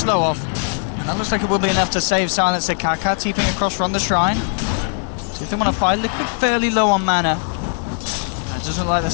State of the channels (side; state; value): right; silent; 57 dB below the other